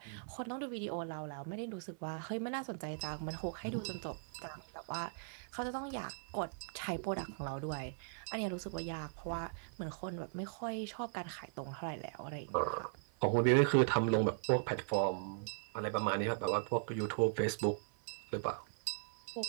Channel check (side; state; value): left; silent; 52 dB below the other